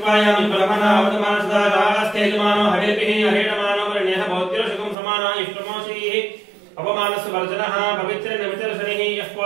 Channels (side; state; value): left; drops out; at 5.0 s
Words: ब्रह्मणा अवतमानसदास्तेजमानो हरेभिः हरेणमानो वर्ण्यः भौत्योषकं समाना इष्टमोषीः अपमानस्य वर्जनः पवित्रेण विचर्षणिः यः